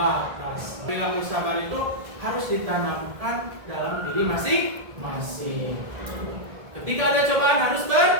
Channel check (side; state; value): left; late; 1.7 ms